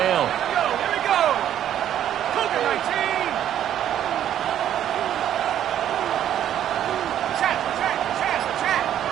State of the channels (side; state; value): left; quieter; 10.8 dB